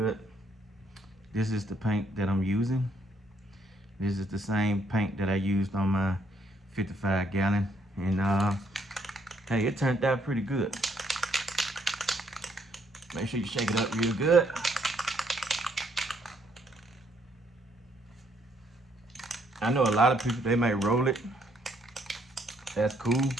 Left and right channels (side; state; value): both; normal; correlation 0.70